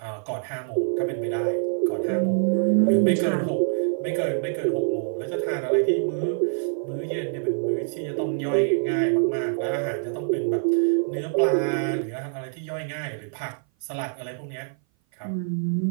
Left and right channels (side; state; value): left; silent; 57 dB below the other